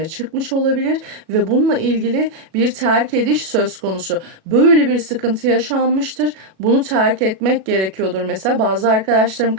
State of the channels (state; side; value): late; left; 37 ms